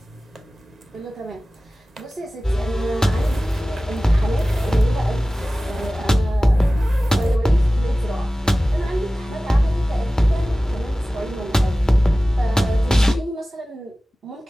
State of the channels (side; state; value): both; normal; correlation 0.97